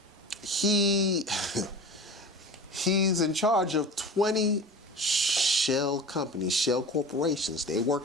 He's in charge of 20 shell companies, shell corporations. They're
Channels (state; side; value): normal; both; correlation 0.35